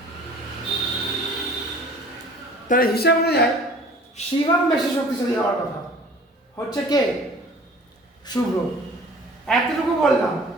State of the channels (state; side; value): normal; both; correlation 0.48